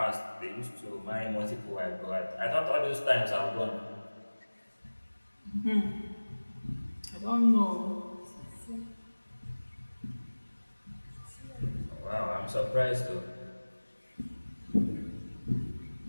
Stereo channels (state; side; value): inverted; both; correlation -1.00